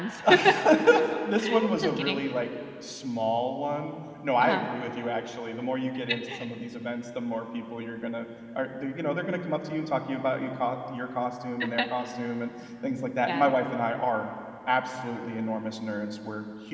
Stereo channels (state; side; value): identical; both; correlation 1.00